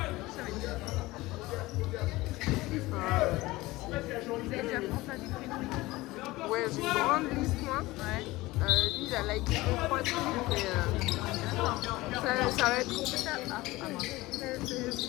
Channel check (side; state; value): right; quieter; 19.7 dB